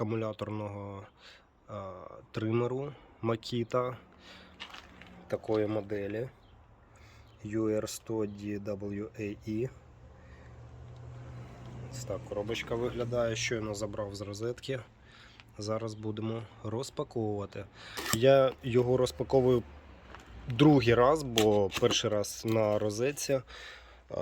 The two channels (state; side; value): identical; both; correlation 1.00